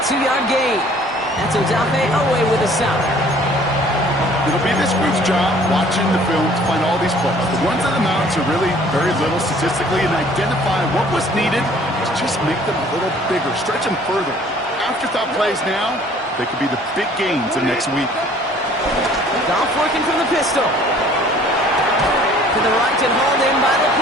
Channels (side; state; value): both; normal; correlation 0.55